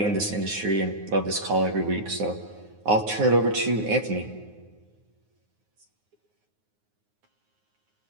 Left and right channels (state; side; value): late; left; 9.5 ms